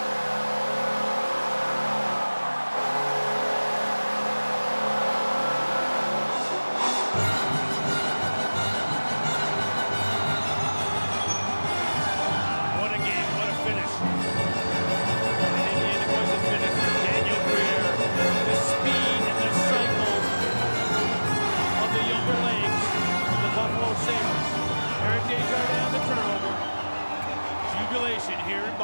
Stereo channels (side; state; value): both; inverted; correlation -1.00